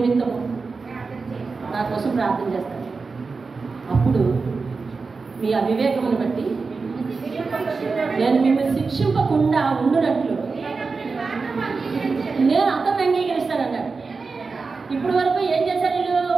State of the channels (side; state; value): left; quieter; 4.4 dB